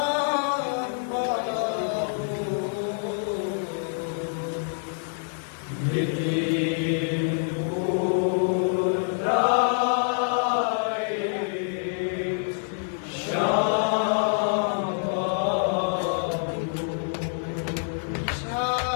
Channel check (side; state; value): right; silent; digital silence